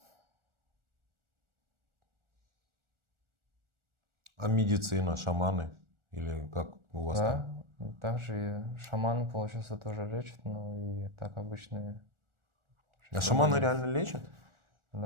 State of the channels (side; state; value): left; late; 1.4 ms